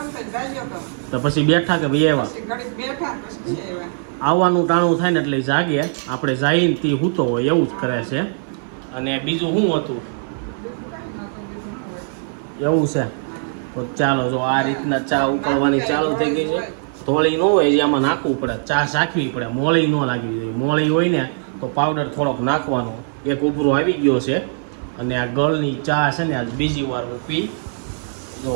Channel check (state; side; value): silent; left; 56 dB below the other